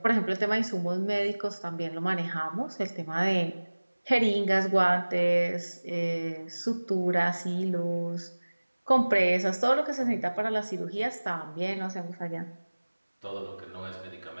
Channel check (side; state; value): both; inverted; correlation -1.00